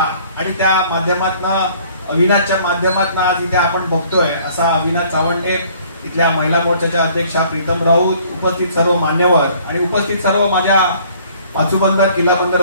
आणि त्या माध्यमातून अविनाशच्या माध्यमातून आज इथे आपण बघतोय असा अविनाश चावंडे, इथल्या महिला मोर्चाच्या अध्यक्षा प्रीतम राऊत, उपस्थित सर्व मान्यवर आणि उपस्थित सर्व माझ्या पाचूबंदर किल्ला बंदर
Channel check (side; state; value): both; inverted; correlation -0.57